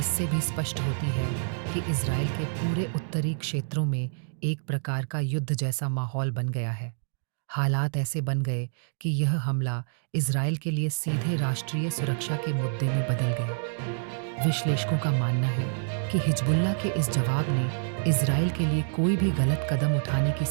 भी स्पष्ट होती है कि इजराइल के पूरे उत्तरी क्षेत्रों में एक प्रकार का युद्ध जैसा माहौल बन गया है। हालात ऐसे बन गए कि यह हमला इजराइल के लिए सीधे राष्ट्रीय सुरक्षा के मुद्दे में बदल गया। विश्लेषकों का मानना है कि हिजबुल्लाह के इस जवाब ने इजराइल के लिए कोई भी गलत कदम उठाने की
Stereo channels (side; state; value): left; silent; digital silence